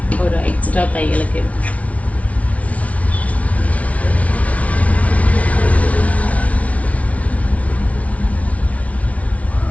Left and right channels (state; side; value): late; right; 0.066 ms